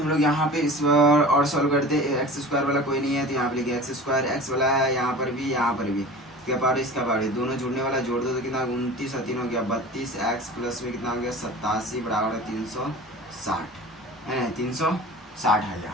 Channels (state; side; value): normal; both; correlation 0.38